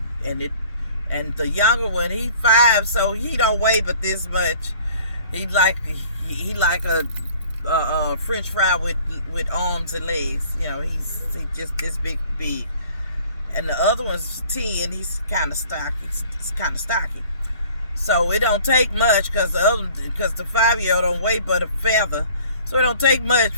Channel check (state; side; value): inverted; both; correlation -0.51